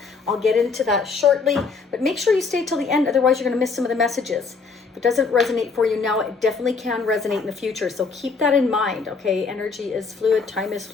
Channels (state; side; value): quieter; right; 4.7 dB